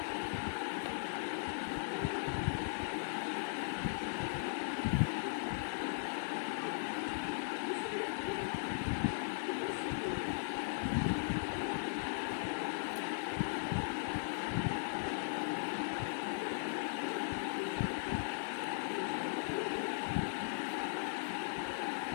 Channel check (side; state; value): right; silent; 52 dB below the other